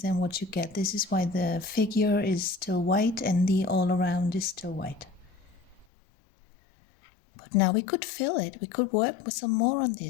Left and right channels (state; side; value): drops out; right; at 5.9 s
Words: what you get. This is why the figure is still white and the all around is still white. But now we could fill it. We could work with some more on